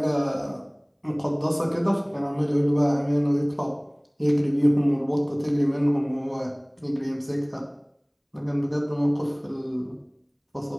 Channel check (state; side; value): identical; both; correlation 1.00